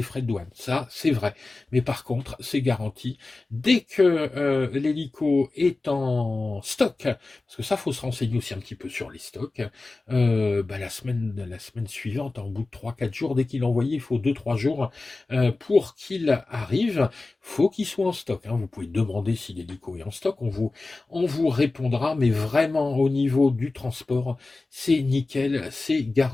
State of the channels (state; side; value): quieter; right; 3.4 dB